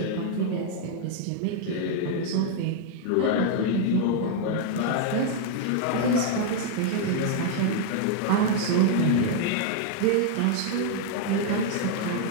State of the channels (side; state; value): both; different; correlation -0.01